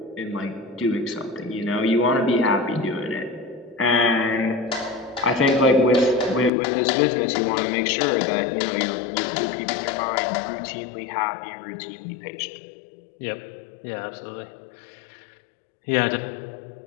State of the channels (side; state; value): right; drops out; at 6.5 s